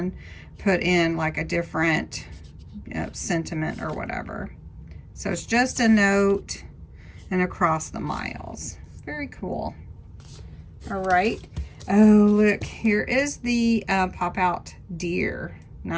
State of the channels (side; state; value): both; identical; correlation 1.00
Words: put in like a different, you know, sentiment or whatever. So it's just a note and across the miles. Very cool. All right. Oh, look, here is the pop-out deer.